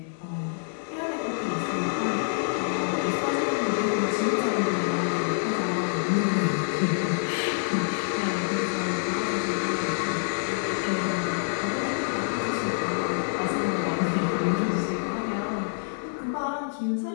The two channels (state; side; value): silent; right; 58 dB below the other